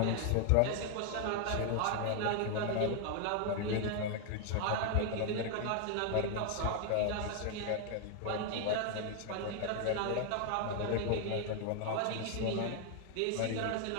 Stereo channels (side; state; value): both; different; correlation 0.00